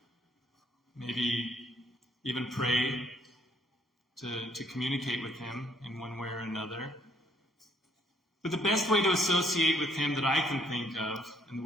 Maybe even pray to communicate with him in one way or another. But the best way to associate with him that I can think of, and the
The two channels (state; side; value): normal; both; correlation 0.66